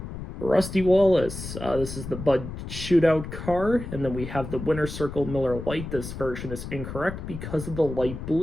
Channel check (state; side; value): noise; left; rumble, 9 dB below the sound